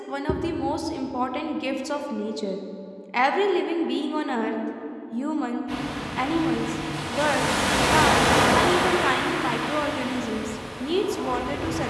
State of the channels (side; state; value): both; identical; correlation 1.00